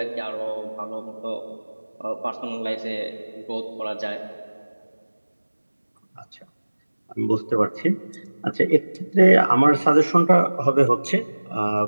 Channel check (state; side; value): inverted; both; correlation -1.00